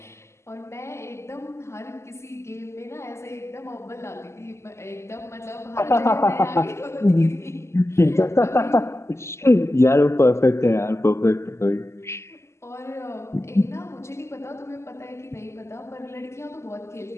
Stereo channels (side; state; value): right; late; 0.13 ms